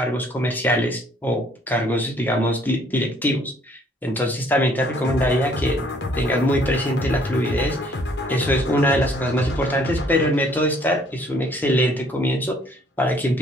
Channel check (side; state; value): both; normal; correlation 0.61